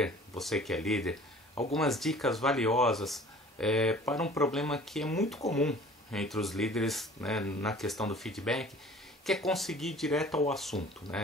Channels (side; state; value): both; normal; correlation 0.47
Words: você que é líder, algumas dicas valiosas para um problema que é muito comum entre os líderes, né, na questão do feedback, que é conseguir ir direto ao assunto,